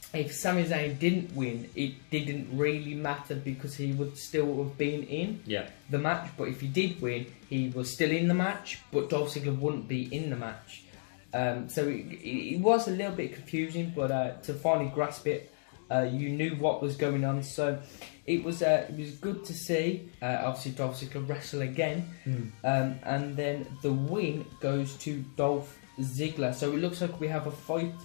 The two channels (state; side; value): silent; right; digital silence